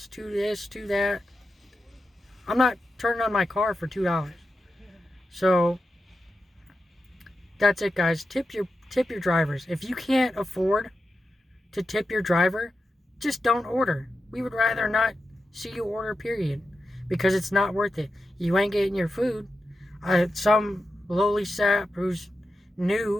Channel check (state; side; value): normal; both; correlation 0.90